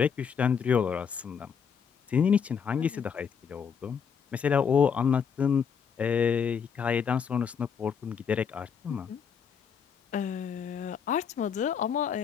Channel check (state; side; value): quieter; right; 6.9 dB